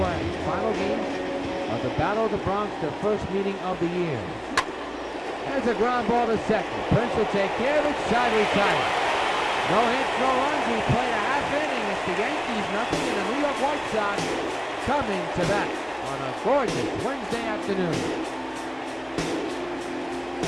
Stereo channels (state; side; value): identical; both; correlation 1.00